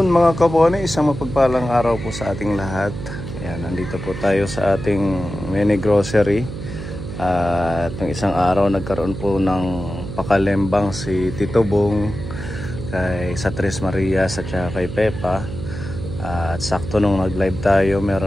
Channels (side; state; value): right; noise; hum, 8 dB below the sound